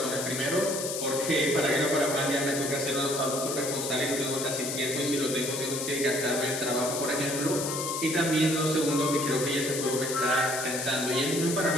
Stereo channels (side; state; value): left; noise; hiss, 4 dB below the sound